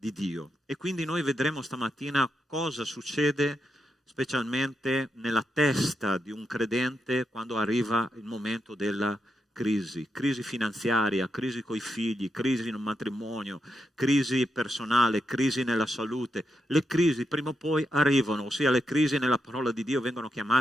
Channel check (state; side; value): normal; both; correlation 0.84